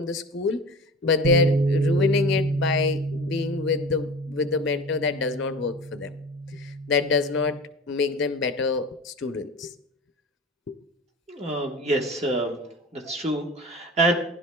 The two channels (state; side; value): normal; both; correlation 0.35